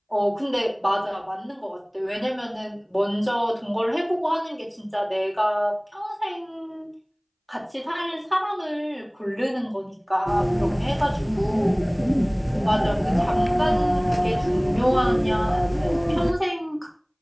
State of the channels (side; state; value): both; identical; correlation 1.00